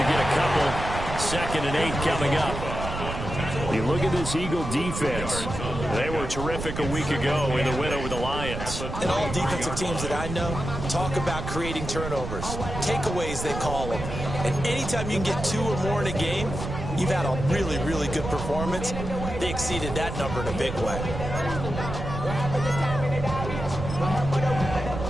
get a couple. 2nd and 8 coming up. You look at this Eagle defense. They were terrific a week ago in the win over the Lions. And all defensive teams that I know talk about creating turnovers. Takeaways, they call them. And anytime you can get 2 or more in a game, you've had a really, really good performance. They exceeded that number in a big way.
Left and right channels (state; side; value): noise; right; rumble, 6 dB below the sound